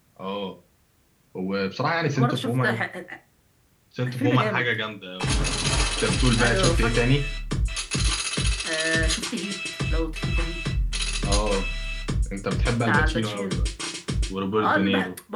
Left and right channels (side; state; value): both; identical; correlation 1.00